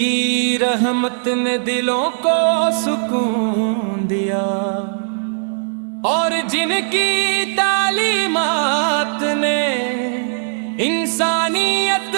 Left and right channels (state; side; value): silent; left; 66 dB below the other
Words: رحمت نے دلوں کو سکون دیا اور جن کی تعلیمات نے انسانیت